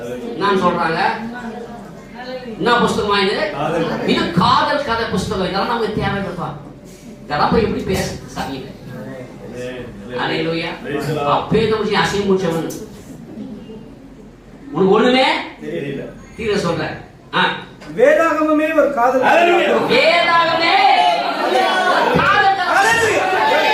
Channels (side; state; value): both; identical; correlation 1.00